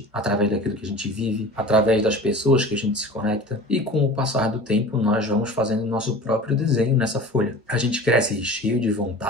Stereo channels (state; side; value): normal; both; correlation 0.38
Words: através daquilo que a gente vive, através das pessoas que a gente se conecta. E com o passar do tempo, nós vamos fazendo nosso próprio desenho nessa folha. A gente cresce cheio de